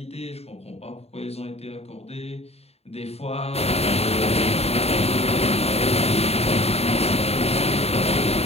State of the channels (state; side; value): late; right; 0.30 ms